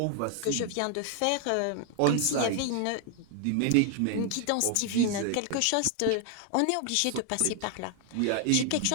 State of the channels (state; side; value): different; both; correlation 0.00